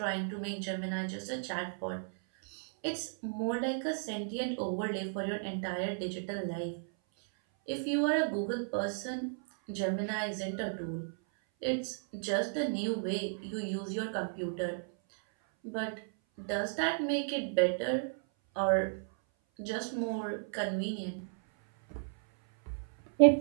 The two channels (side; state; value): left; silent; 55 dB below the other